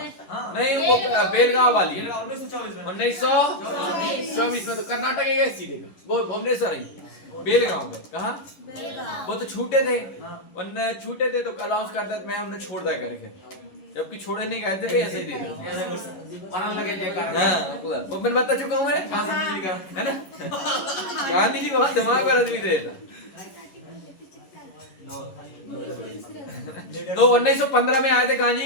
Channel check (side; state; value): right; late; 11 ms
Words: नहीं, वो बेलगांव वाली 1924 में। 1924 में। तो कर्नाटक है सीधे, वो भुवनेश्वर है, बेलगांव में। कहाँ? वो तो छूटे थे, उनने छूटे थे तो अनाउंस करता मैं उन्हें छोड़ दिया करके, जबकि छोड़े नहीं गए थे, ऐसे ही दे दिया। मरण लगे जयकार। हाँ वो मैं बता चुका हूँ मैं, है ना। गांधी जी को बहुत दिमाग पर आदमी देता। तो 1915 में आए थे